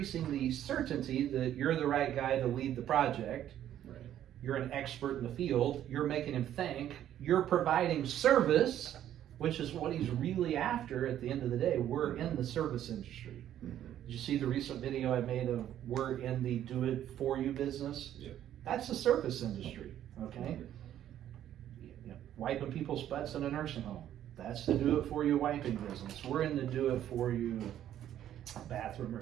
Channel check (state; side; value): quieter; left; 11.3 dB